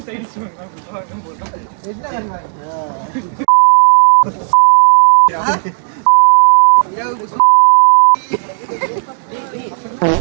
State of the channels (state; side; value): silent; left; digital silence